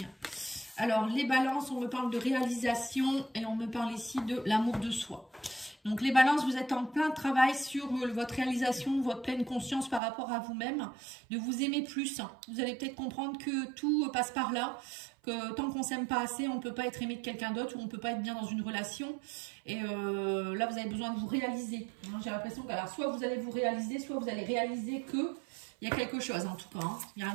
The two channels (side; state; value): left; drops out; at 10.0 s